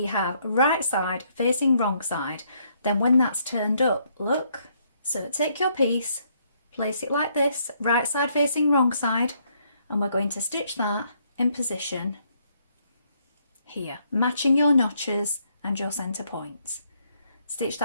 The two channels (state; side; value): inverted; both; correlation -0.71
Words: have right side facing wrong side. Then when that's turned up, look, so take your piece, place it like this, right side facing wrong side, and we're going to stitch that in position here, matching your notches and your centre points. Stitch